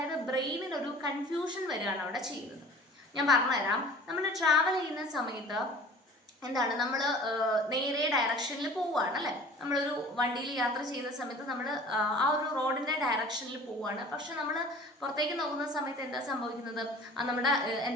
ബ്രെയിനിനൊരു കൺഫ്യൂഷൻ വരികയാണ് അവിടെ ചെയ്യുന്നത്. ഞാൻ പറഞ്ഞുതരാം. നമ്മൾ ട്രാവൽ ചെയ്യുന്ന സമയത്ത് എന്താണ്, നമ്മൾ നേരെ ഡയറക്ഷനിൽ പോവുകയാണ്, അല്ലേ? നമ്മളൊരു വണ്ടിയിൽ യാത്ര ചെയ്യുന്ന സമയത്ത് നമ്മൾ ആ ഒരു റോഡിൻ്റെ ഡയറക്ഷനിൽ പോവുകയാണ്. പക്ഷെ നമ്മൾ പുറത്തേക്ക് നോക്കുന്ന സമയത്ത് എന്താ സംഭവിക്കുന്നത്?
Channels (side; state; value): both; normal; correlation 0.45